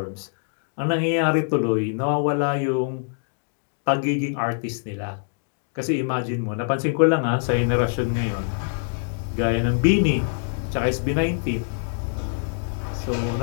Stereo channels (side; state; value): right; silent; digital silence